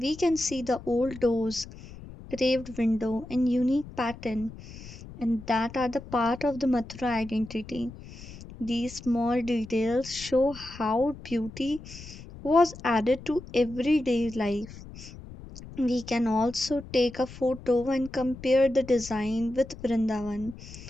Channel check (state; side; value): noise; left; rumble, 15 dB below the sound